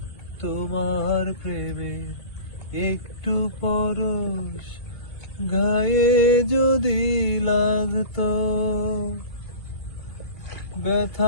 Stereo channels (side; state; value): right; late; 2.3 ms